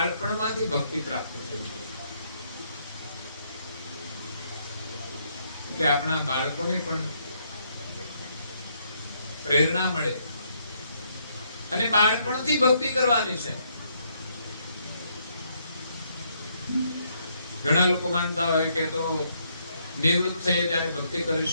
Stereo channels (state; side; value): inverted; both; correlation -0.73